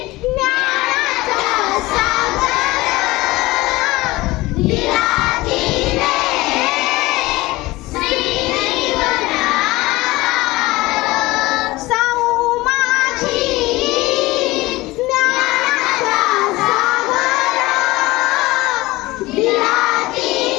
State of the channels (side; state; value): right; quieter; 19.9 dB